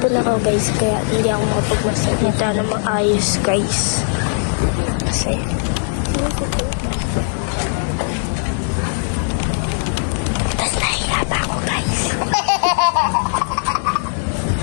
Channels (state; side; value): silent; right; digital silence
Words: ako guys. Kaya hindi ako makapagmasalita ng maayos guys. Okay. Tapos nahihirap ako guys.